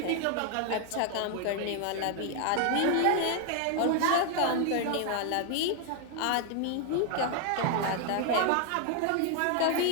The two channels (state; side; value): different; both; correlation 0.00